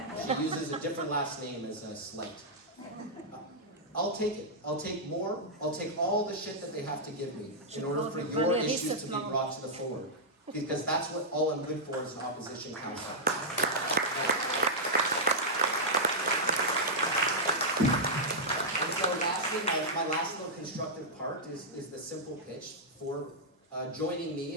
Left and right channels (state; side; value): normal; both; correlation -0.08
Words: She uses a different last name as a slight. I'll take it. I'll take more. I'll take all the shit that they have to give me in order for your issues to be brought to the forward. Because that's what all I'm good for as an opposition council. And so lastly, my last little constructive part is the simple pitch for joining me